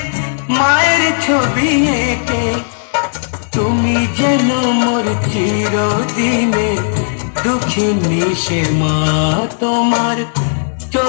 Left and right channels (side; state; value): right; silent; digital silence